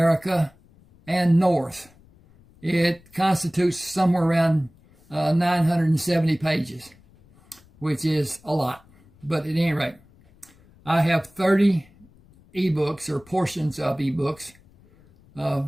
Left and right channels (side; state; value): left; noise; rumble, 28 dB below the sound